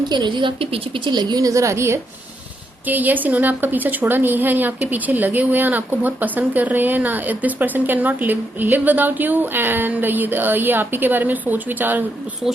एनर्जीज आपके पीछे पीछे लगी हुई नजर आ रही है कि यस इन्होंने आपका पीछा छोड़ा नहीं है, ये आपके पीछे लगे हुए हैं, आपको बहुत पसंद कर रहे हैं ना। This person can not live without you, and ये आप ही के बारे में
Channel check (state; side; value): normal; both; correlation 0.79